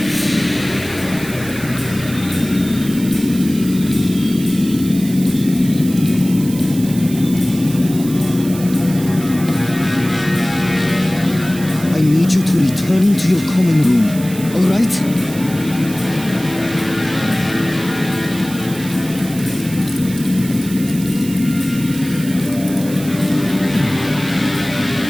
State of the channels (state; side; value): noise; right; hiss, 14 dB below the sound